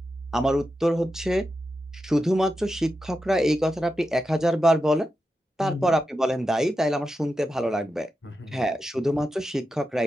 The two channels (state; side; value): normal; both; correlation 0.89